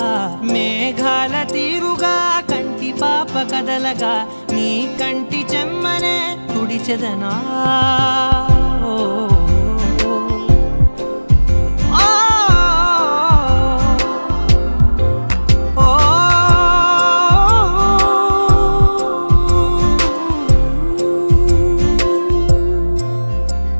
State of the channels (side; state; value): both; inverted; correlation -1.00